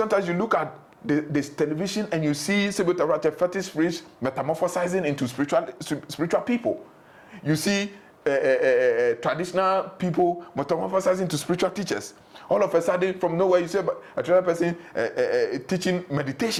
you look at this television and you see fetish priests metamorphosizing into spiritual people. You see traditional people metamorphosizing into spiritual teachers. All of a sudden, from nowhere, you see a traditional person teaching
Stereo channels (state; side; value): identical; both; correlation 1.00